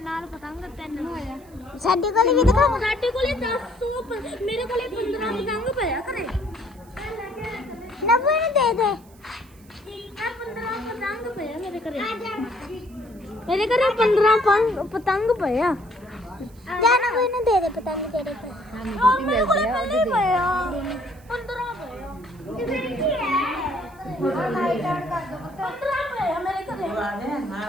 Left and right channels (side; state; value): right; noise; hiss, 28 dB below the sound